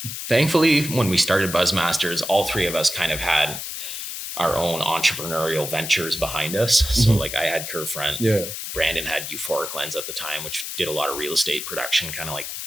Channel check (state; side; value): noise; left; hiss, 7 dB below the sound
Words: thankfully, when we started BuzzMasters, all three of us kind of had our own entrepreneurial ventures behind us. So like I had Curvefront, Brandon had Euphoric Lens at the time, which did a lot of real estate production, kind of like